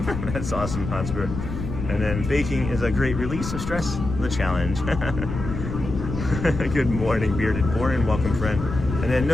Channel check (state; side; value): noise; left; rumble, 6 dB below the sound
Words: That's awesome, Hotspur. And then baking is a great release of stress. The challenge. Good morning, Bearded Borin. Welcome, friend. And then